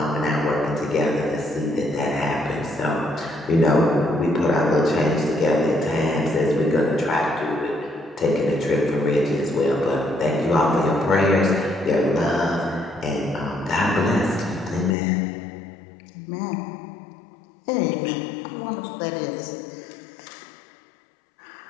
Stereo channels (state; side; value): drops out; right; at 15.0 s